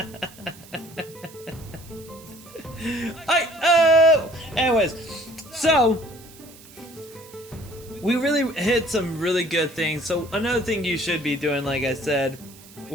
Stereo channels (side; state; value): right; noise; hiss, 21 dB below the sound